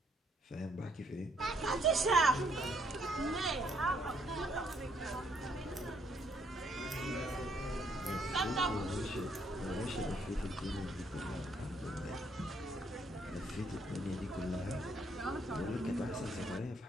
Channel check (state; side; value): normal; both; correlation 0.69